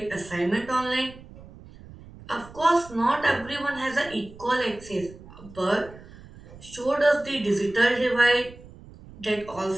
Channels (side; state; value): right; noise; rumble, 19 dB below the sound